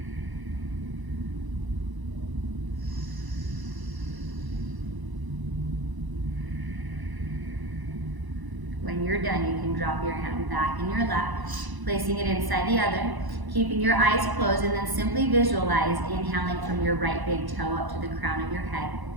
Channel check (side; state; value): left; late; 1.0 ms